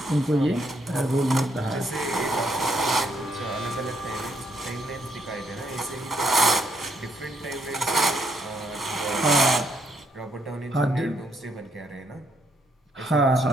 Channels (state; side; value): normal; both; correlation 0.74